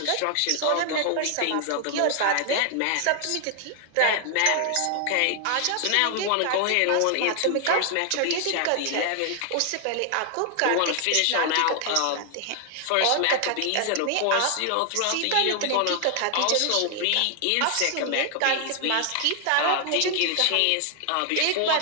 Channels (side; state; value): both; different; correlation 0.00